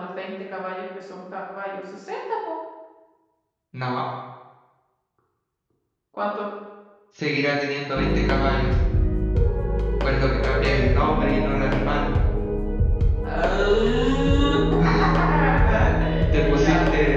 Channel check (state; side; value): identical; both; correlation 1.00